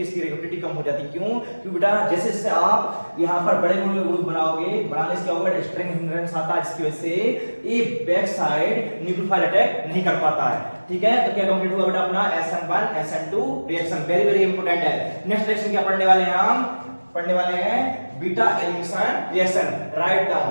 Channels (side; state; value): both; inverted; correlation -1.00